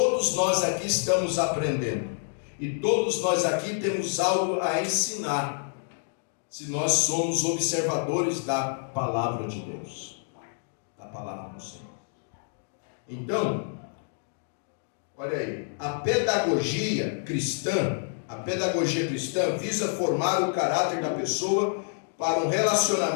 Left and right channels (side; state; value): right; silent; digital silence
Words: nós aqui estamos aprendendo e todos nós aqui temos algo a ensinar, se nós somos observadores da palavra de Deus, da palavra do Senhor. Então, olha aí, a pedagogia cristã visa formar o caráter da pessoa para um